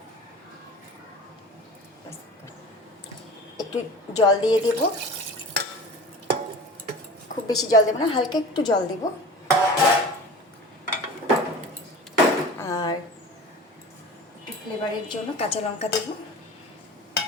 একটু জল দিয়ে দেব, খুব বেশি জল দেব না, হালকা একটু জল দেব। আর একটু ফ্লেভারের জন্য কাঁচা লঙ্কা দেব।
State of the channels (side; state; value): both; normal; correlation 0.37